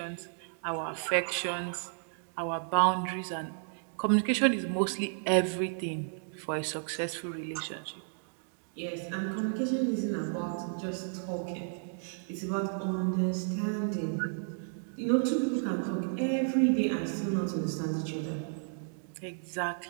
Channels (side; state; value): left; silent; digital silence